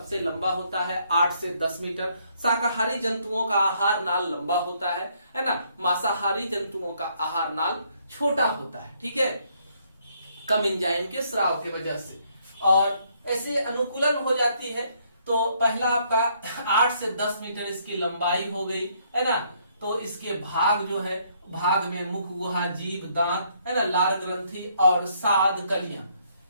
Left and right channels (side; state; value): both; inverted; correlation -0.69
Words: लंबा होता है 8 से 10 मीटर। शाकाहारी जंतुओं का आहार नाल लंबा होता है ना। मांसाहारी जंतुओं का आहार नाल छोटा होता है, ठीक है, कम एंजाइम के स्राव की वजह से, और ऐसे अनुकूलन हो जाती है। तो पहला आपका 8 से 10 मीटर इसकी लंबाई हो गई, है ना। तो इसके भाग जो है, भाग में मुख गुहा, जीभ, दांत, है ना, लार ग्रंथि और साद कलियां,